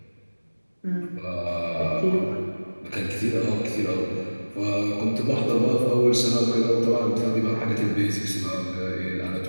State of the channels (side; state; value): both; inverted; correlation -1.00